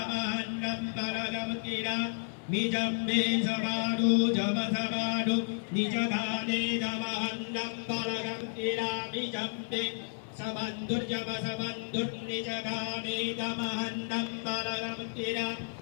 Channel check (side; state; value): right; silent; 56 dB below the other